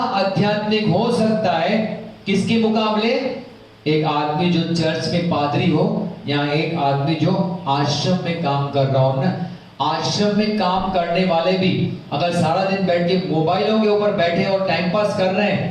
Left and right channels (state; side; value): identical; both; correlation 1.00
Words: हो सकता है किसके मुकाबले, एक आदमी जो चर्च में पादरी हो या एक आदमी जो आश्रम में काम कर रहा हो ना। आश्रम में काम करने वाले भी अगर सारा दिन बैठ के मोबाइलों के ऊपर बैठे और टाइम पास कर रहे